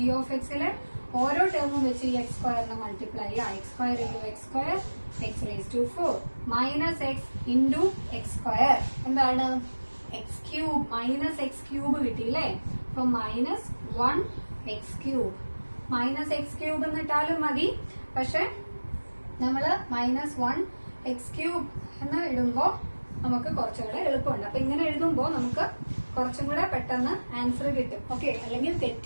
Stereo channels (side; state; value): both; inverted; correlation -1.00